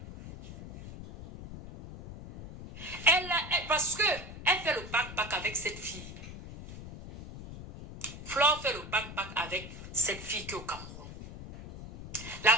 Parce que elle fait le bac avec cette fille. Flore fait le bac avec cette fille qui est au Cameroun. La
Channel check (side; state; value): left; noise; rumble, 12 dB below the sound